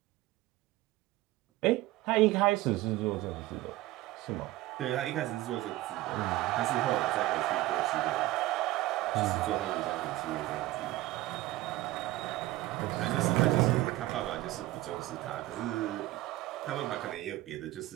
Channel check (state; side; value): quieter; left; 17.3 dB